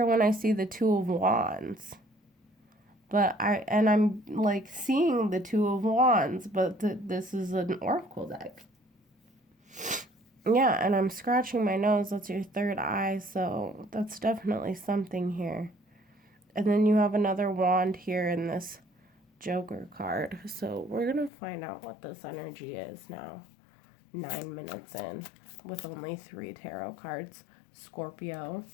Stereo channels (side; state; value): right; drops out; at 21.3 s